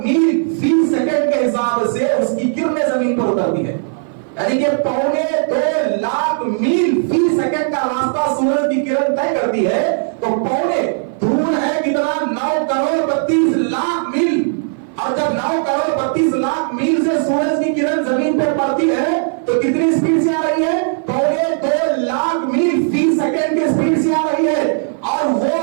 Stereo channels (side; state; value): left; silent; 57 dB below the other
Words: میل فی سیکنڈ کے حساب سے اس کی کرنیں زمین پر اترتی ہے، یعنی کہ 2.25 میل فی سیکنڈ کا راستہ سورج کی کرن طے کرتی ہے۔ تو دور ہے کتنا؟ 9,32,00,000 میل، اور جب 9,32,00,000 میل سے سورج کی کرن زمین پر پڑتی ہے تو کتنی سپیڈ سے آ رہی ہے؟ 2.25 میل فی سیکنڈ کی سپیڈ سے آ رہی ہے، اور وہ